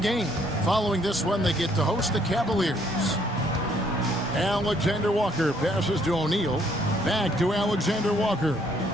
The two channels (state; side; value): normal; both; correlation 0.66